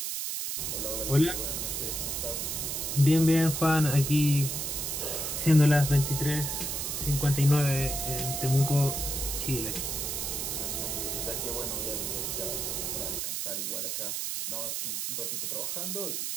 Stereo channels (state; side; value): noise; right; hiss, 2 dB below the sound